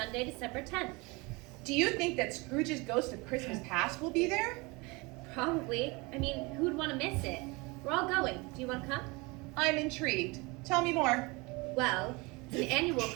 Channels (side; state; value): left; quieter; 26.0 dB